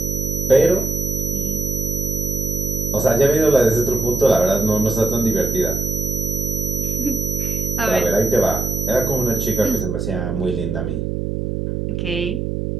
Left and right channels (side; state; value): right; noise; hum, 2 dB below the sound